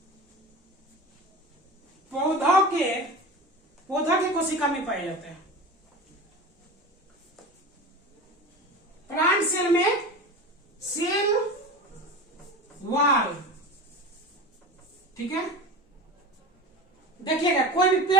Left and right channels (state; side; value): normal; both; correlation 0.31